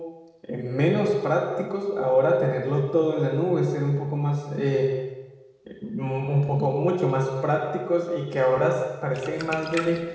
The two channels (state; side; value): identical; both; correlation 1.00